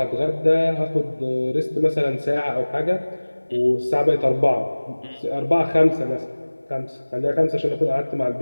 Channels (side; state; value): both; inverted; correlation -1.00